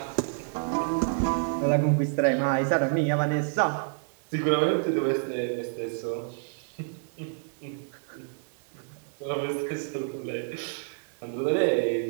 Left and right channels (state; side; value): silent; left; digital silence